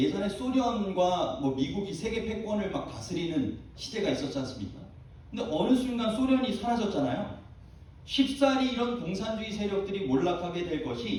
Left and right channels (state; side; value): identical; both; correlation 1.00